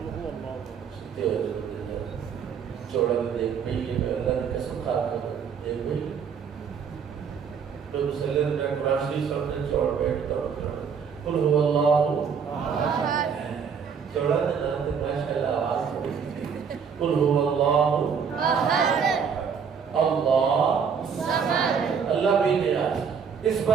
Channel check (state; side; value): quieter; left; 6.6 dB